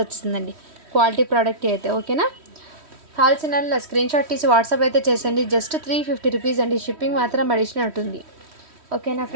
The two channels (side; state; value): left; late; 3.1 ms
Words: వచ్చిందండి. క్వాలిటీ ప్రోడక్ట్ అయితే. ఓకేనా, కావాల్సిన స్క్రీన్ షాట్ తీసి వాట్సాప్ అయితే చేసండి. జస్ట్ 350 రూపీస్ అండి. షిప్పింగ్ మాత్రం అడిషనల్ ఉంటుంది. ఓకేనా